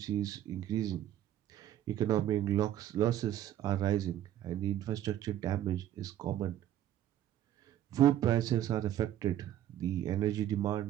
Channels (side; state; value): left; quieter; 11.8 dB